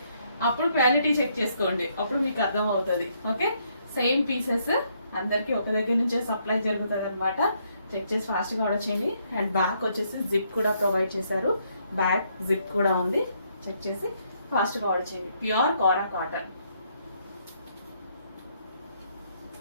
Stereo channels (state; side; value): inverted; both; correlation -0.72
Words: అప్పుడు క్వాలిటీ చెక్ చేసుకోండి, అప్పుడు మీకు అర్థం అవుతుంది. ఓకే, సేమ్ పీసెస్ అందరికి ఒక దగ్గర నుంచే సప్లై జరుగుతుంది అనమాట. చెక్ చేసి ఫాస్ట్గా ఆర్డర్ చేయండి. అండ్ బ్యాక్ వచ్చేసి జిప్ కూడా ప్రొవైడ్ చేశారు. బ్యాక్ జిప్ కూడా ఉంది. చెక్ చేసి ఫాస్ట్గా ఆర్డర్ చేయండి. ప్యూర్ కోరా కాటన్.